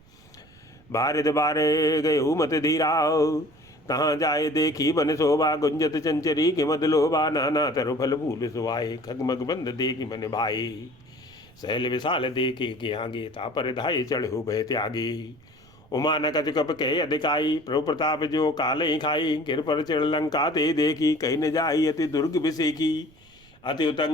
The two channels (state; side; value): noise; right; rumble, 27 dB below the sound